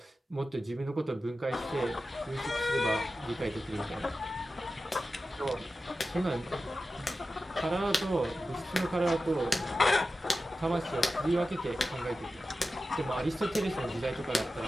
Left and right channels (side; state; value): both; normal; correlation 0.93